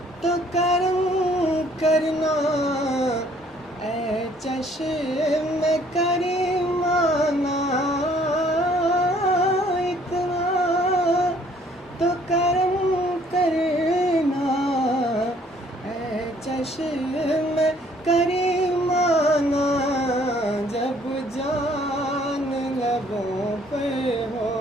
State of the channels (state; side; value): normal; both; correlation 0.61